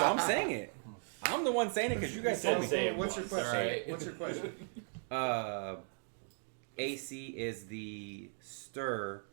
I'm saying it. I'm the one saying it because you guys told me. Say it What's your question? Alright. What's your question? AC is the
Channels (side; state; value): left; silent; 53 dB below the other